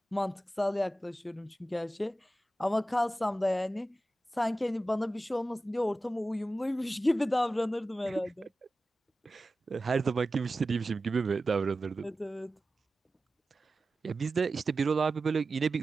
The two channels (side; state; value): both; normal; correlation 0.94